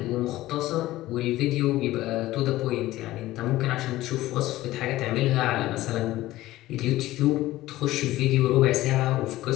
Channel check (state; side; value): quieter; right; 16.4 dB